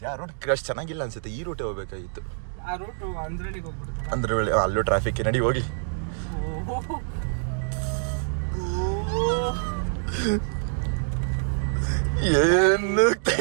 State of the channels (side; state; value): left; silent; digital silence